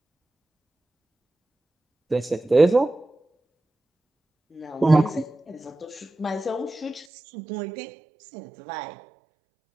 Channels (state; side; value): drops out; left; at 7.1 s